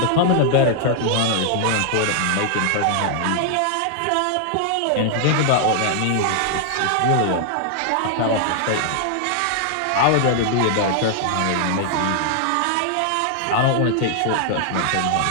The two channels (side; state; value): both; different; correlation 0.00